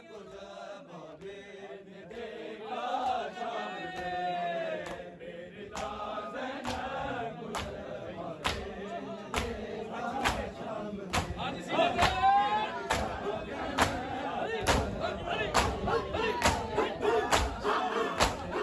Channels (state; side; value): identical; both; correlation 1.00